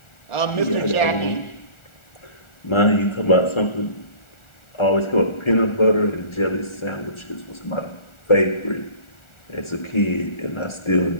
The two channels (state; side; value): late; right; 1.4 ms